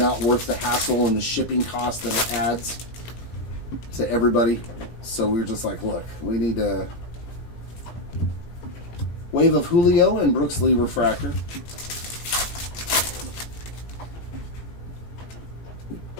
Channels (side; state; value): right; late; 18 ms